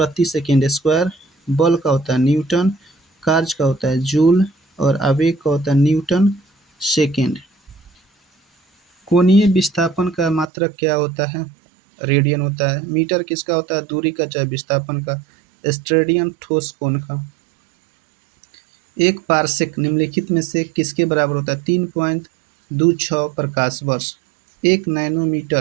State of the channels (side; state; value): left; drops out; at 10.5 s